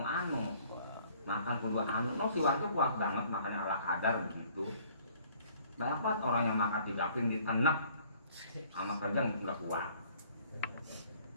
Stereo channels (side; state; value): both; inverted; correlation -0.57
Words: Makan kedua anu, no si warga kuat banget makannya ala kadar begitu. Banyak banget orang yang makan 3 piring ditenek sama kerja nggak kuat.